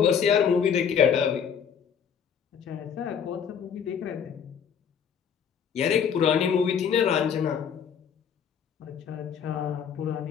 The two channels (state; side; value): quieter; right; 7.5 dB